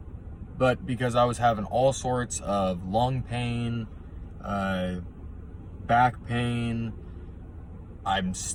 but because I was having all sorts of lung pain, back pain. I'm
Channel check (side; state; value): both; identical; correlation 1.00